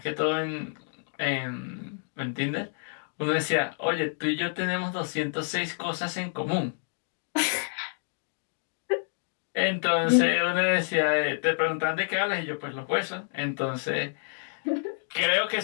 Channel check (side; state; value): right; silent; digital silence